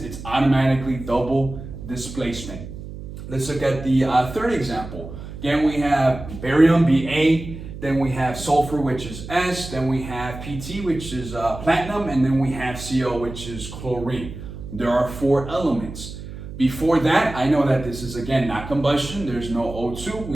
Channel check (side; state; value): right; noise; hum, 11 dB below the sound